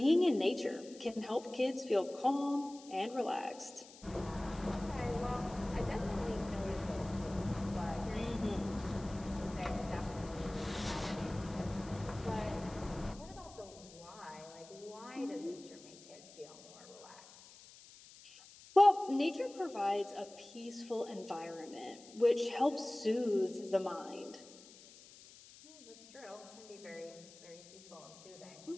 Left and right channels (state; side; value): noise; left; hiss, 20 dB below the sound